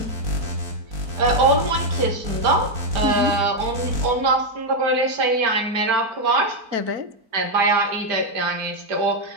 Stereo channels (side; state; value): left; late; 4.5 ms